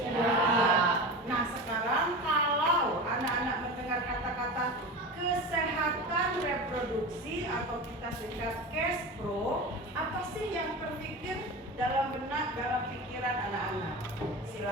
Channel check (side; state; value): both; normal; correlation 0.28